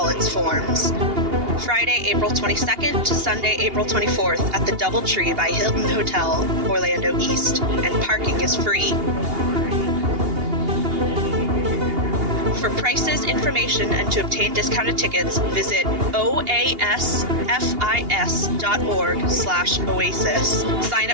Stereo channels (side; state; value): left; late; 2.8 ms